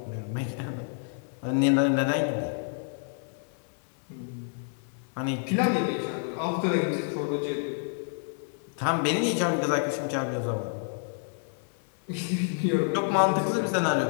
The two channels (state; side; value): silent; right; 57 dB below the other